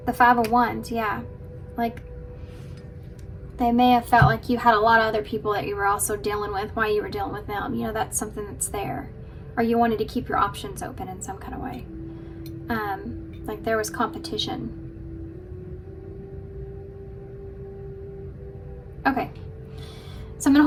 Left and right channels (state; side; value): identical; both; correlation 1.00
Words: The Five of Wands, yeah. Like, they may have felt like you had a lot of other people that you were also dealing with while you were dealing with them. You know, that's something that's there. Or you wanted to keep your options open in some kind of way. Like there was competition. Okay. So I'm going to